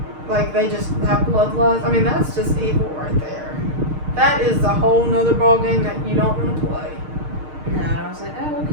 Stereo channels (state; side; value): late; left; 6.5 ms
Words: like they just have bloodlust. I mean, that's just evil right there. That is a whole nother ballgame that you don't want to play. No, I was like, oh,